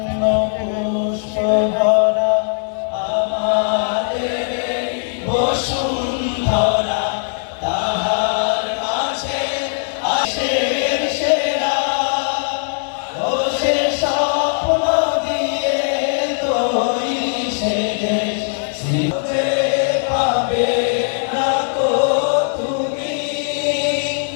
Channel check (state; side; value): silent; right; 63 dB below the other